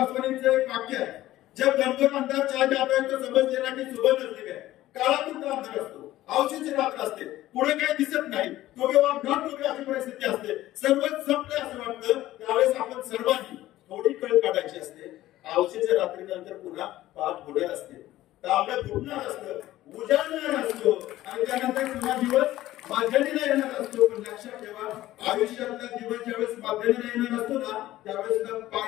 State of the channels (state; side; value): quieter; right; 15.2 dB